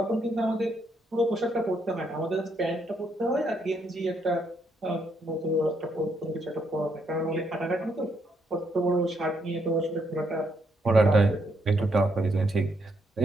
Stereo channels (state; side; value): normal; both; correlation 0.75